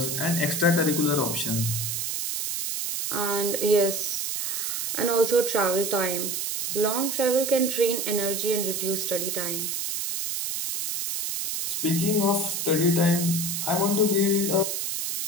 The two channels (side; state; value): right; noise; hiss, 2 dB below the sound